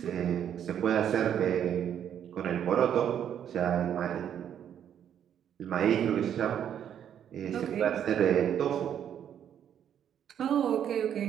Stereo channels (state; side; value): quieter; left; 9.4 dB